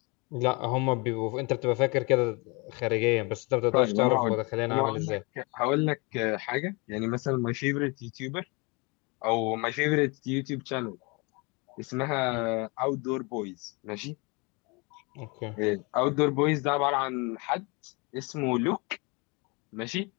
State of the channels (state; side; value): quieter; right; 29.0 dB